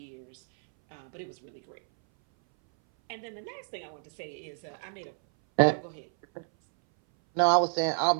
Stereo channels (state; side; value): silent; left; 58 dB below the other